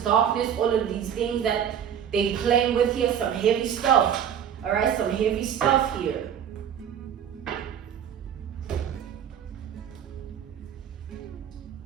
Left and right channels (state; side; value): quieter; left; 8.8 dB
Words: all of these things that they playing with here, some heavy stuff. All right, some heavy stuff here.